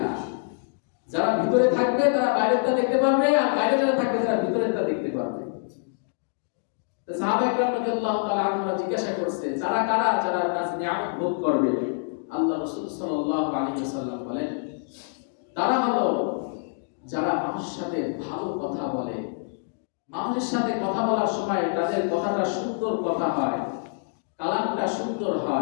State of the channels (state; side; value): silent; right; digital silence